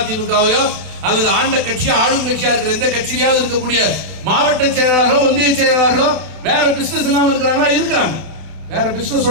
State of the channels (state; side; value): late; left; 32 ms